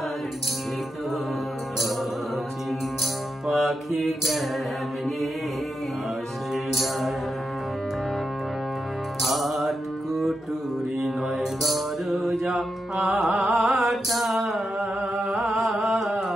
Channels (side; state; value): both; normal; correlation 0.86